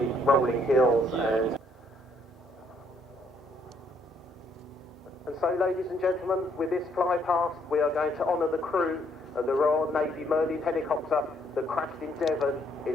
rolling hills. And so, ladies and gentlemen, with this fly past, we are going to honour the crew of the Royal Navy Merlin helicopter that crashed in Devon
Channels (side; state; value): both; normal; correlation 0.69